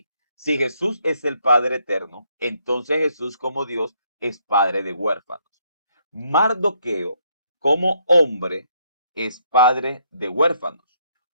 si Jesús es el Padre eterno, entonces Jesús como Dios es Padre de huérfanos. Mardoqueo como hombre es padre de huérfanos.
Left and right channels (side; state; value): both; inverted; correlation -0.72